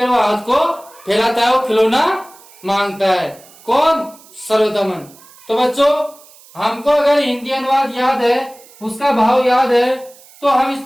वो हाथ को फैलाता है, वो खिलौना मांगता है। कौन? सर्वदमन। तो बच्चों, हमको अगर हिंदी अनुवाद याद है, उसका भाव याद है, तो हम इस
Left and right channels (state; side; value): noise; right; hiss, 24 dB below the sound